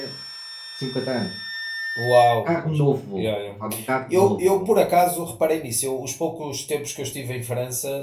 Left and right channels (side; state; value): both; identical; correlation 1.00